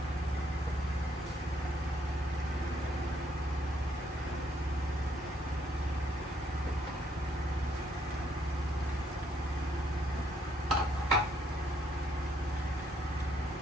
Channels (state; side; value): normal; both; correlation 0.70